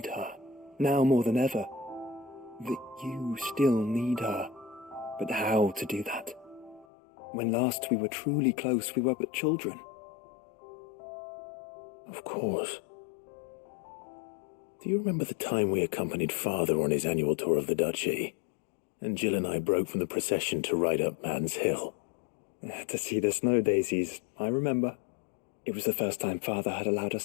her. Now more than ever. That you still need her. But how to do that? When last we were truly close, we were but children. Of course. Do you remember the time we accompanied Father on his annual tour of the Duchy? And Jill and I broke from the procession to ride up Man's Hill. To see the snow daisies, I remember. It was the first time Father had allowed us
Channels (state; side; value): drops out; right; at 6.9 s